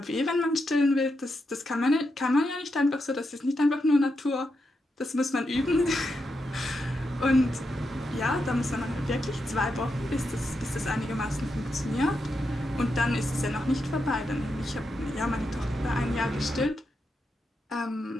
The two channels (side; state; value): both; normal; correlation 0.85